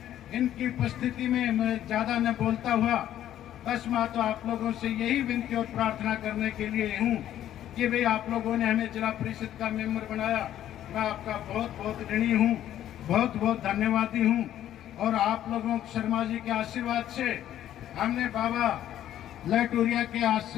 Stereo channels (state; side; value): quieter; right; 11.8 dB